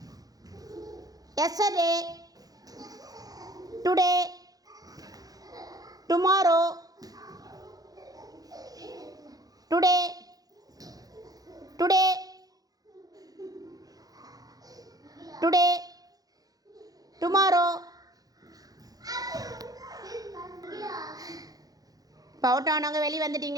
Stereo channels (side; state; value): left; late; 0.18 ms